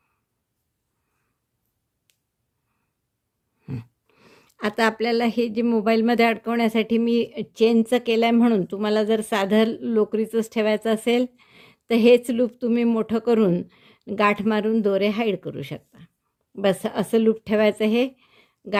आता आपल्याला हे जे मोबाईलमध्ये अडकवण्यासाठी मी चेनचं केलं आहे म्हणून तुम्हाला जर साधं लोकरीचंच ठेवायचं असेल तर हेच लूप तुम्ही मोठं करून गाठ मारून दोरे हाईड करू शकता. बस असं लूप ठेवायचं, हे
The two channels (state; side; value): identical; both; correlation 1.00